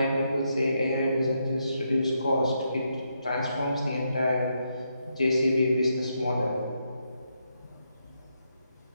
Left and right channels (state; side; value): inverted; both; correlation -0.81